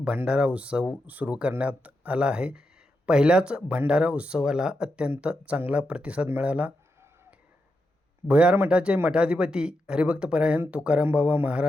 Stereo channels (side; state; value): both; normal; correlation 0.86